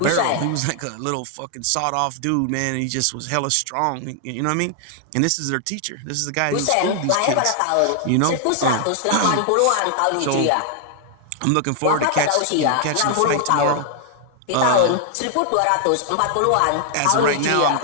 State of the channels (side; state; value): both; different; correlation 0.00